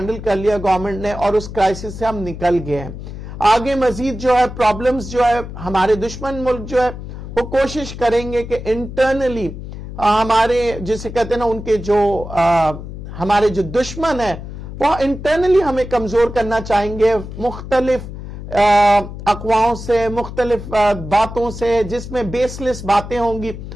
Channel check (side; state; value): left; noise; hum, 10 dB below the sound